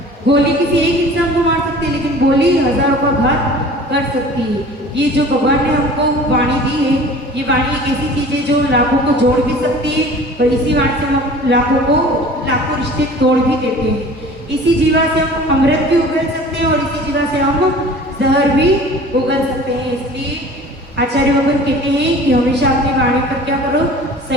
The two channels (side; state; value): both; normal; correlation 0.44